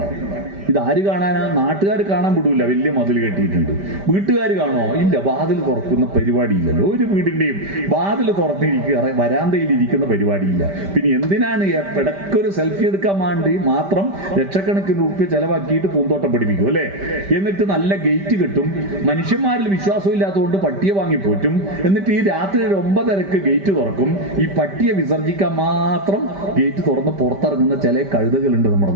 ഇതാര് കാണാനാ? നാട്ടുകാർ കാണാൻ വിടൂല. വലിയ മതിൽ കെട്ടിയിട്ടുണ്ട്. വീട്ടുകാർ കാണുമോ? ഇല്ല. വാതിൽ തുറക്കുന്ന പരിപാടിയില്ലല്ലോ. ഒരു വീടിന്റെയും വാതിൽ തുറന്നിരിക്കുക, വരാന്തയിൽ ഇരിക്കുന്ന പരിപാടിയില്ല. പിന്നെ എന്തിനാണ് ഇടയ്ക്കൊരു സെൽഫി എടുക്കാൻ വേണ്ടി മാത്രം ലക്ഷക്കണക്കിന് രൂപ ചെലവാക്കിയിട്ട് പൂന്തോട്ടം പഠിപ്പിക്കും, അല്ലേ? എന്നിട്ട് നല്ല ഗേറ്റ് കിട്ടും. മനുഷ്യന്മാരിൽ വിശ്വാസമില്ലാത്തതുകൊണ്ട് പട്ടിയെ വാങ്ങിപ്പോറ്റും. എന്നിട്ട് ഈ രാത്രി 9:30 ഗേറ്റ് തുറക്കും. ഈ പട്ടിയെ വിസർജിക്കാൻ മാത്രം ഗേറ്റ് തുറന്ന് പുറത്തിറങ്ങുന്ന ചില കഴുതകളുണ്ട് നമ്മുടെ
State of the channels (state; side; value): late; left; 5.1 ms